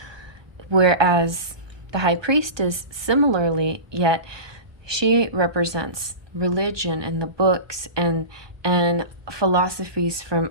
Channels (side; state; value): left; late; 1.2 ms